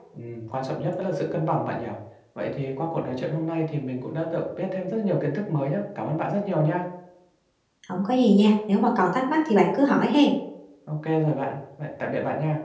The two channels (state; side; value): identical; both; correlation 1.00